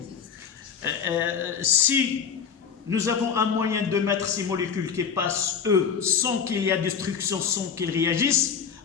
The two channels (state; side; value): quieter; right; 6.9 dB